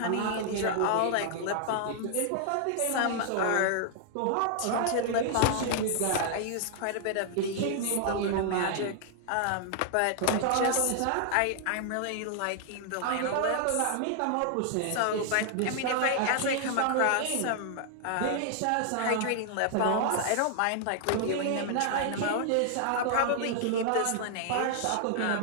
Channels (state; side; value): different; both; correlation 0.00